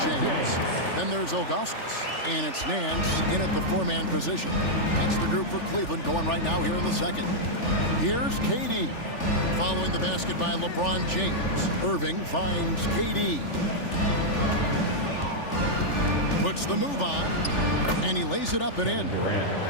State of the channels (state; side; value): late; right; 3.4 ms